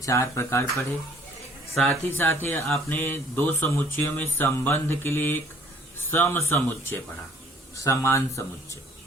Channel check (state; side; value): normal; both; correlation 0.57